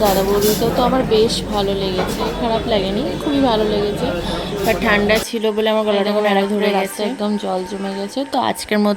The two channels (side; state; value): both; identical; correlation 1.00